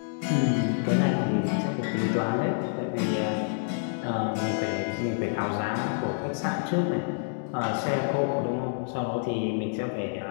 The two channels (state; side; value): silent; right; digital silence